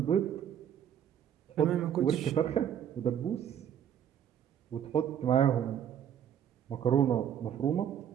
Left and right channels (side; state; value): left; quieter; 9.4 dB